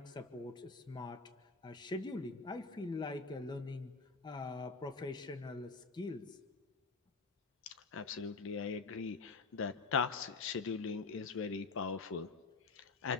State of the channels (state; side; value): quieter; right; 4.3 dB